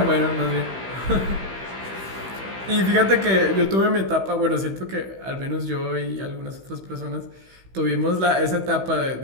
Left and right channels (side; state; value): left; late; 16 ms